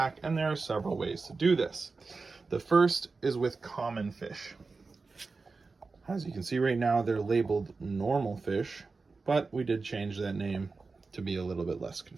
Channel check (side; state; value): left; quieter; 4.1 dB